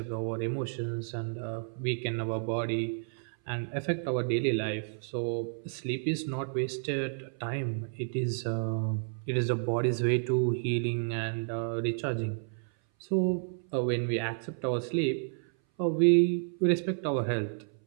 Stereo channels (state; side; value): silent; left; 57 dB below the other